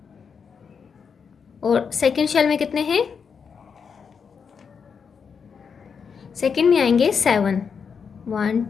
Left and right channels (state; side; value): quieter; right; 6.2 dB